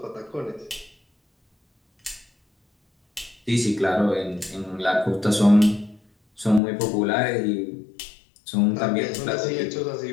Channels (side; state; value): right; drops out; at 6.6 s